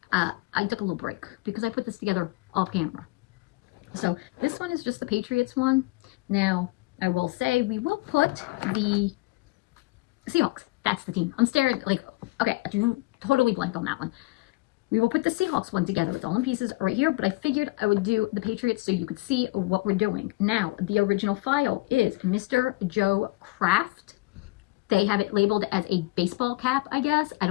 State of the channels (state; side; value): quieter; right; 22.2 dB